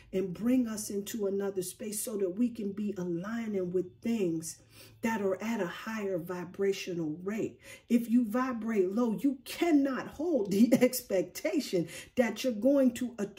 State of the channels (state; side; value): identical; both; correlation 1.00